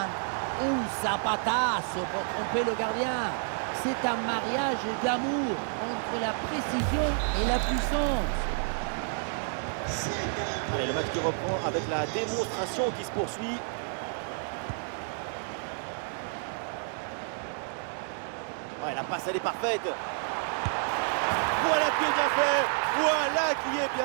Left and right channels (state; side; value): silent; left; 58 dB below the other